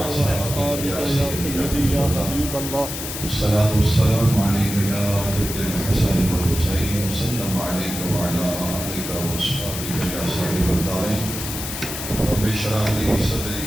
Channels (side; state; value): left; noise; hiss, 6 dB below the sound